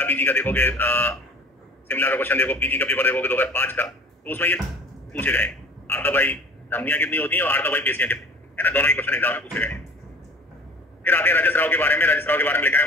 पीजी का देखोगे, शिमला का क्वेश्चन देखो, पीजी का पेपर देखोगे 2005 का, तो उसमें ये पूछे गए आर्तव भाई धमनियां कितनी होती हैं और आर्तव भाई पेशियां कितनी है ना, दोनों ही क्वेश्चन एग्जाम में पूछे गए। फिर आते हैं रजस्राव के बारे में। रजस्राव के बारे में लिखा है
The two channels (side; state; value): both; normal; correlation 0.45